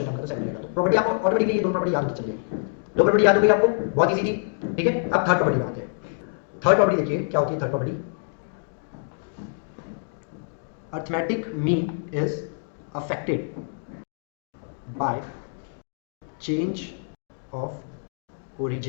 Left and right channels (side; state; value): right; silent; digital silence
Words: नंबर, तो 7 रहेगा। तो प्रॉपर्टी आपको ऑटोमेटिकली ये दो प्रॉपर्टी याद होती चलिए, दो प्रॉपर्टी याद हो गई आपको, बहुत इजी थी। ठीक है, अब थर्ड प्रॉपर्टी आते हैं। थर्ड प्रॉपर्टी देखिए क्या होती है third property. Arithmetic mean is affected by change of